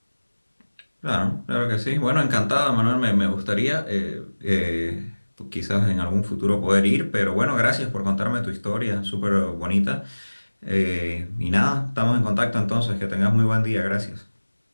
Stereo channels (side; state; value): both; inverted; correlation -1.00